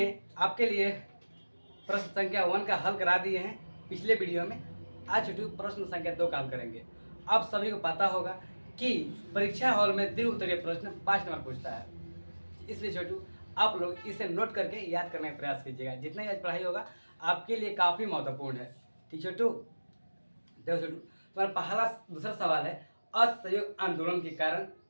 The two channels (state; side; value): inverted; both; correlation -1.00